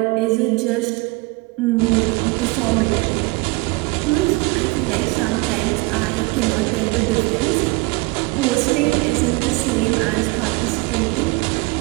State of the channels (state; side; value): quieter; left; 25.1 dB